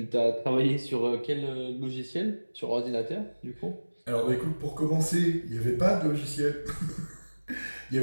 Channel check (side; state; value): both; inverted; correlation -1.00